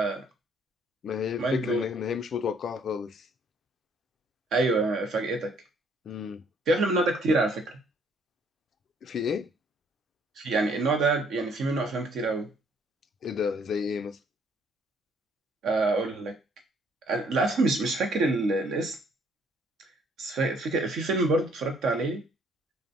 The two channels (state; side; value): normal; both; correlation 0.63